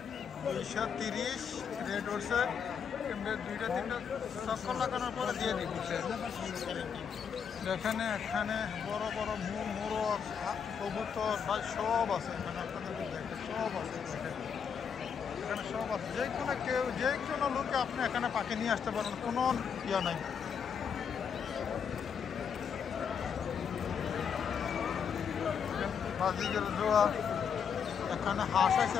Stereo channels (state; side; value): quieter; right; 7.1 dB